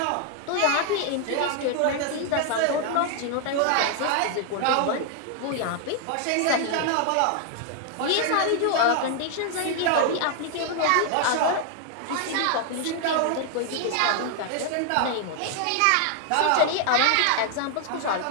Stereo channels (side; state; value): both; different; correlation 0.00